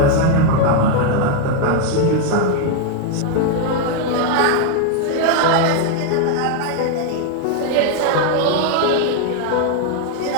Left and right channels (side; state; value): both; different; correlation 0.01